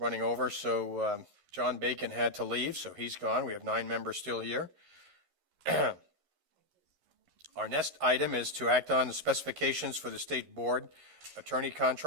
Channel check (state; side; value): late; left; 11 ms